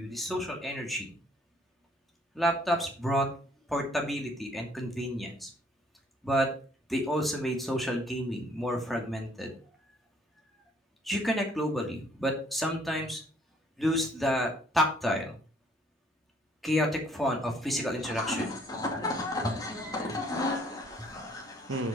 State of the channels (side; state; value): both; normal; correlation 0.62